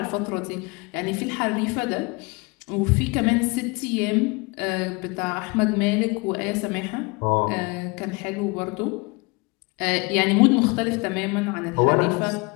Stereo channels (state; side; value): quieter; right; 27.3 dB